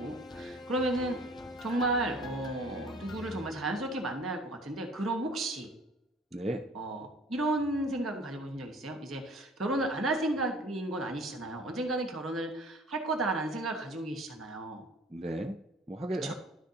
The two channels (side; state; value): both; normal; correlation 0.50